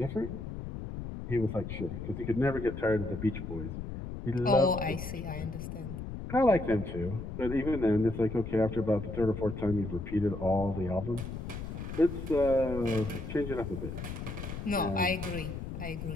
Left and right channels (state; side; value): noise; left; rumble, 7 dB below the sound